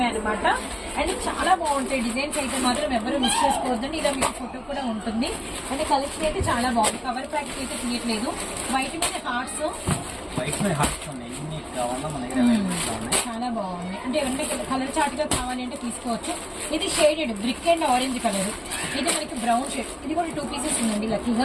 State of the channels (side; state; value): both; identical; correlation 1.00